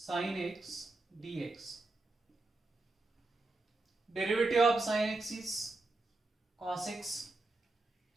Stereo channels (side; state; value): left; quieter; 3.1 dB